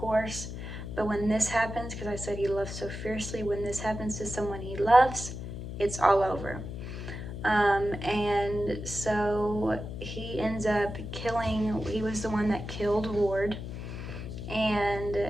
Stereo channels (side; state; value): left; noise; hum, 8 dB below the sound